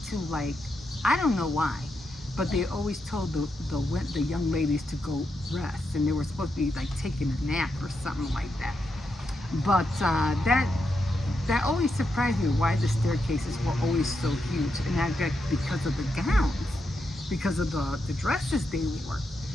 to, like, I don't know why, but they always told the young ladies to go rest, and they were supposed to be like taking a nap or something like that. But that always surprised me, why the staircases were always so huge, and I bet because of the gowns, because of the dresses they wore.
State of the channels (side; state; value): both; normal; correlation 0.84